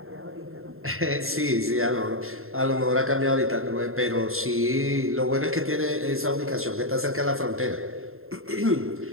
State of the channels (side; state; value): left; late; 0.61 ms